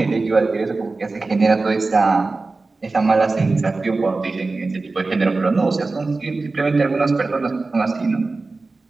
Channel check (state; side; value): quieter; left; 3.6 dB